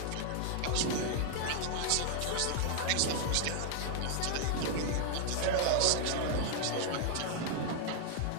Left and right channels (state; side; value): different; both; correlation 0.00